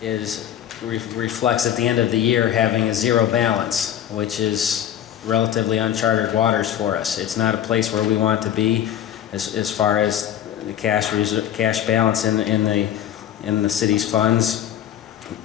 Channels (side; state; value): right; quieter; 10.6 dB